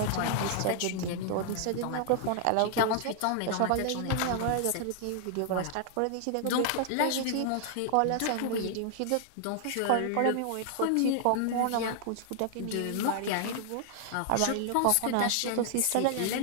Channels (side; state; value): both; different; correlation 0.00